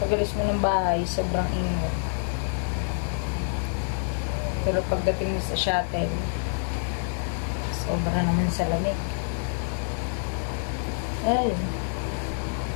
mo ng bahay, sobrang init. Pero pagdating mo sa shuttle, sobra naman sa lamig. Ay,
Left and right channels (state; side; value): silent; right; digital silence